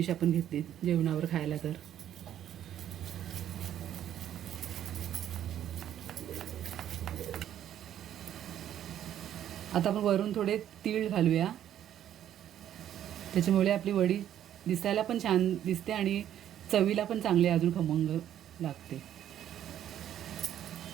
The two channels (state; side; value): quieter; left; 10.9 dB